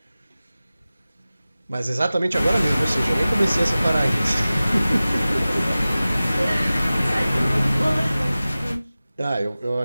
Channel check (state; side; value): inverted; both; correlation -0.97